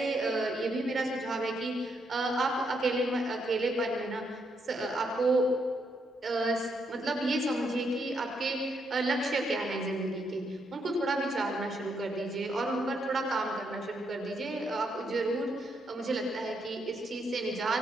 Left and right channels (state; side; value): normal; both; correlation 0.77